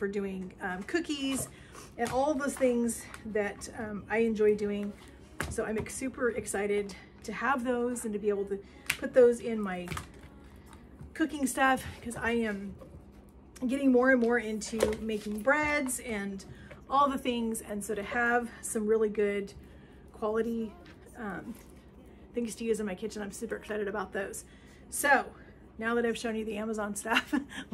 doing cookies and all those things that I enjoy doing. So I'm super excited to have those and to be able to put those in my cooking stuff, because I am getting more and more into making breads and all the things. And so to have some really good quality things to use in my kitchen, I'm super excited about those. So now that I've shown you the Amazon stuff,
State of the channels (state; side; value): identical; both; correlation 1.00